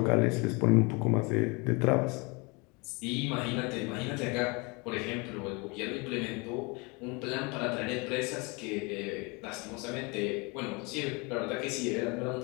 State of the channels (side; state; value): right; quieter; 28.8 dB